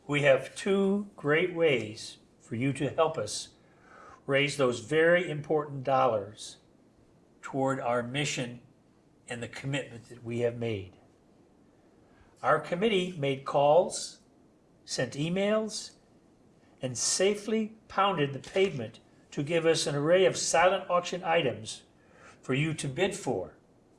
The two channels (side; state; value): both; identical; correlation 1.00